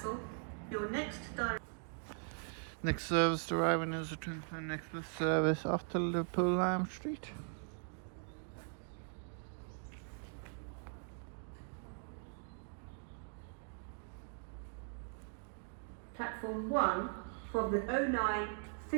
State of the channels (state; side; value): silent; left; 51 dB below the other